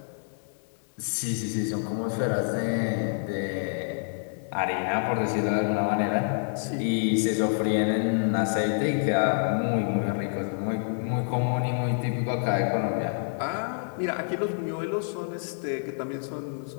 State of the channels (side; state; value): right; silent; 60 dB below the other